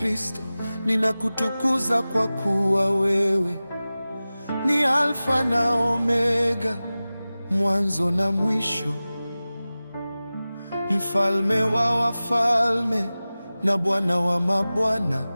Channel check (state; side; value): inverted; both; correlation -0.97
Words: ninakutukuza kwa kuwa wewe ni Alfa na Omega, mwanzo na mwisho, mfalme wa wafalme na Bwana wa mabwana.